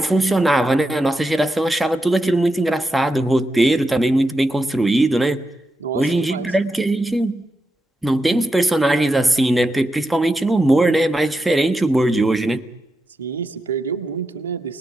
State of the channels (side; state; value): both; normal; correlation 0.87